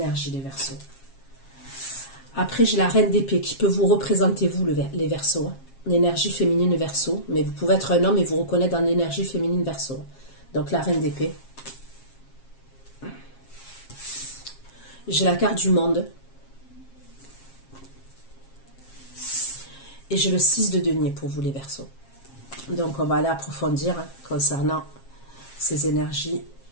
les Verseaux. Après, j'ai la reine d'épée qui peut vous représenter, vous, les Verseaux. L'énergie féminine Verseau. Mais vous pouvez être un homme et vous reconnaître dans l'énergie féminine Verseau. Donc, la reine d'épée. J'ai la carte du monde. Et j'ai le 6 de denier pour vous, les Verseaux. Donc, on va aller approfondir concernant ces énergies.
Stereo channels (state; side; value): late; right; 7.4 ms